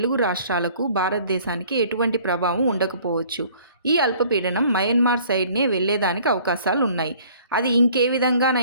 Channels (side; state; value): both; inverted; correlation -0.54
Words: రాష్ట్రాలకు భారతదేశానికి ఎటువంటి ప్రభావం ఉండకపోవచ్చు. ఈ అల్పపీడనం మయన్మార్ సైడ్నే వెళ్లేదానికి అవకాశాలు ఉన్నాయి. అది ఇంకే